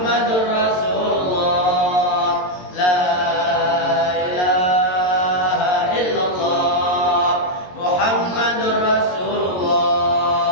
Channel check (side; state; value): right; late; 22 ms